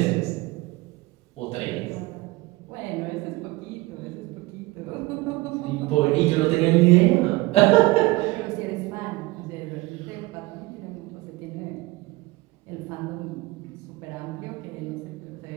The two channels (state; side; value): quieter; left; 21.3 dB